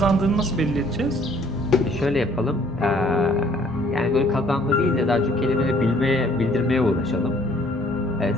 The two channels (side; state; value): both; normal; correlation 0.60